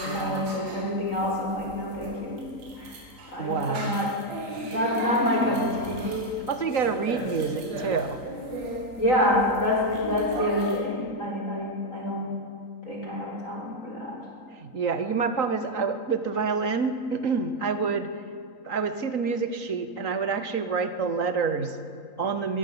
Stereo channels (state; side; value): late; right; 3.9 ms